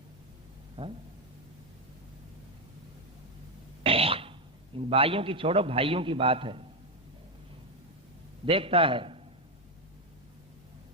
हाँ? इन भाइयों की छोड़ो, भाइयों की बात है। देखता है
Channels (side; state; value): both; normal; correlation 0.06